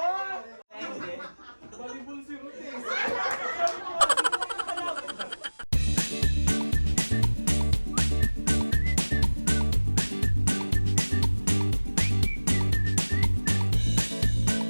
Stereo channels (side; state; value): both; inverted; correlation -1.00